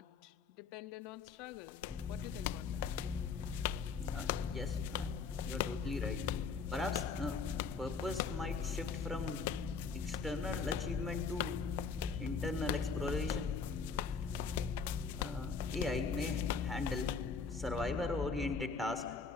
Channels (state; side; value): quieter; right; 5.1 dB